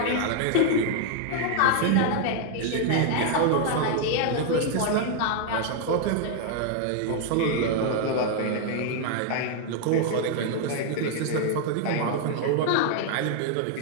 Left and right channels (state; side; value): different; both; correlation 0.00